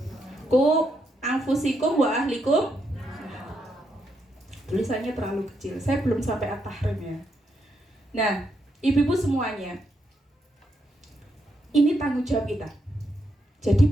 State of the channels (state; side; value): normal; both; correlation 0.80